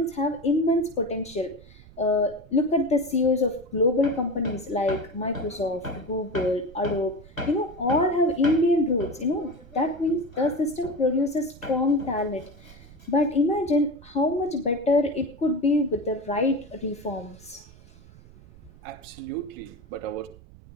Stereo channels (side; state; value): right; noise; rumble, 21 dB below the sound